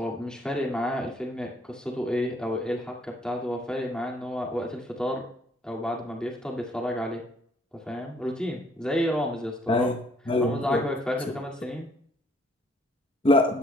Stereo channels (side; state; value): both; normal; correlation 0.64